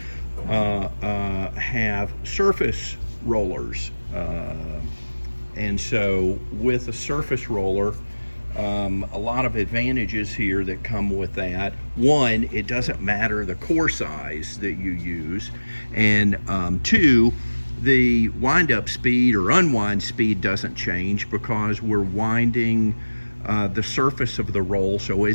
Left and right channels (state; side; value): inverted; both; correlation -1.00